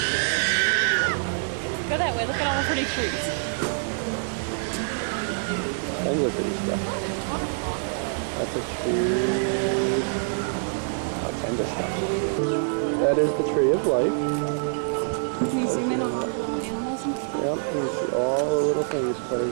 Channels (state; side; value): silent; left; digital silence